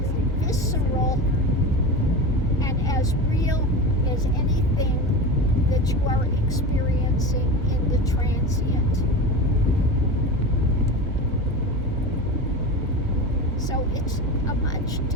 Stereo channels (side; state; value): both; normal; correlation 0.26